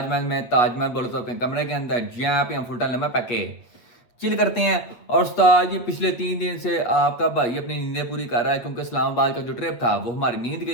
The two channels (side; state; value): right; late; 8.4 ms